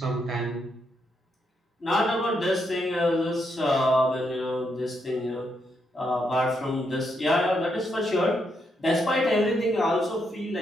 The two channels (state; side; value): normal; both; correlation 0.79